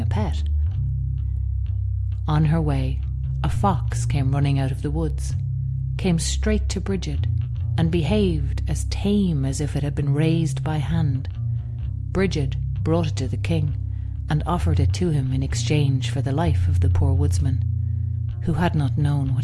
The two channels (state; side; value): identical; both; correlation 1.00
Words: a pet. On her way, a fox came running out of the woods, came straight to Brigid, and behaved as tame as if it had been raised by hand. Brigid brought it to the king and offered it to him in exchange for the life of the poor woodsman, who had not known what